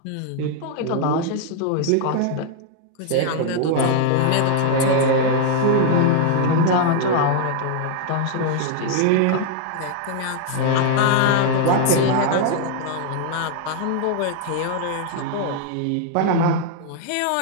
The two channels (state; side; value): different; both; correlation 0.00